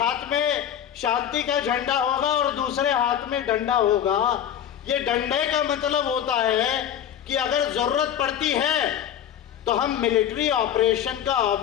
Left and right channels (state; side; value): quieter; right; 9.7 dB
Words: हाथ में शांति का झंडा होगा और दूसरे हाथ में डंडा होगा। ये डंडे का मतलब होता है कि अगर जरूरत पड़ती है तो हम मिलिट्री ऑपरेशन का